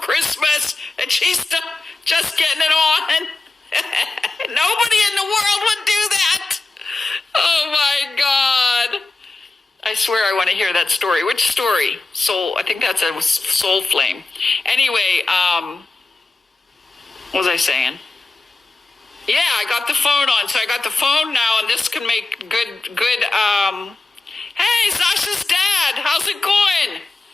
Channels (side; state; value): right; quieter; 3.4 dB